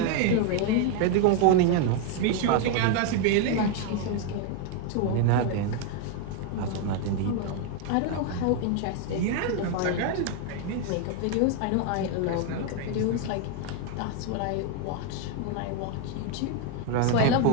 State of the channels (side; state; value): both; different; correlation 0.01